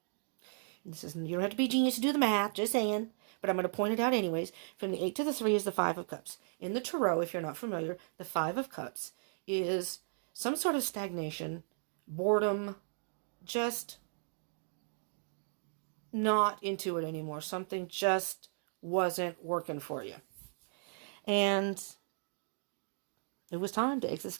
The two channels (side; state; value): left; silent; digital silence